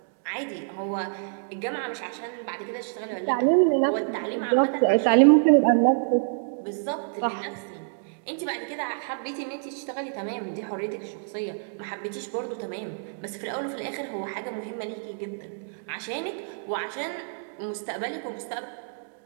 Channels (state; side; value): silent; left; digital silence